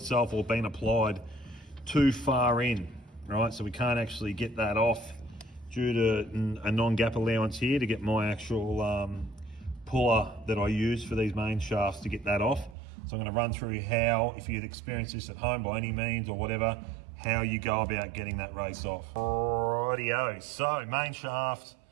or been applied too far in, right? So we can't actually get that off due to a non-gap allowance here to get my actual puller that I use for these main shafts to get that off. So I'm going to run through how, if you'd experienced this at home by any means or whatever, how you go about getting that race off. Rightio, so main shaft,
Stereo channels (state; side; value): drops out; left; at 12.8 s